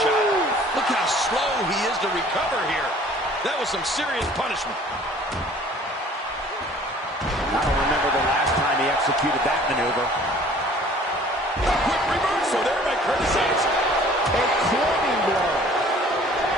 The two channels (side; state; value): both; normal; correlation 0.52